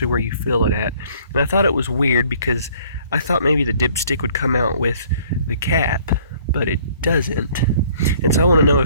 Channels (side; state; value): both; inverted; correlation -0.57